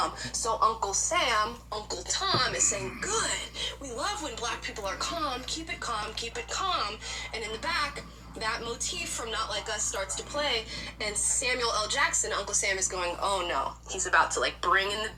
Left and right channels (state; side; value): identical; both; correlation 1.00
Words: So Uncle Sam, Uncle Tom is saying, good, we love when Black people are calm. Keep it calm, keep it calm. And in the back, that motif from Not Like Us starts to play, and Samuel L. Jackson, Uncle Sam, is going, oh no. He's about to like bring in the